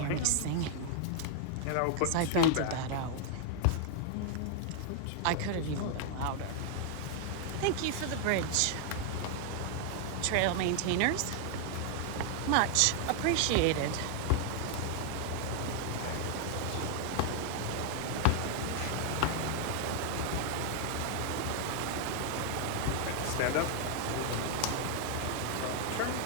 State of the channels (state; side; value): different; both; correlation 0.00